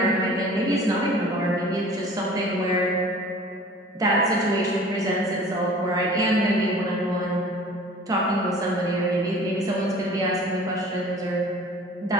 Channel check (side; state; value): both; normal; correlation 0.46